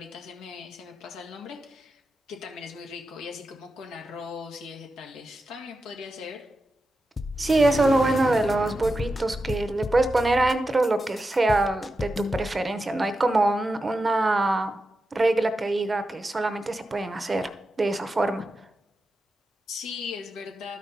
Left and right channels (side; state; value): both; normal; correlation 0.90